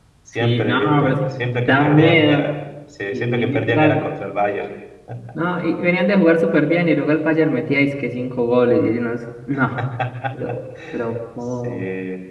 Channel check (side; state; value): both; identical; correlation 1.00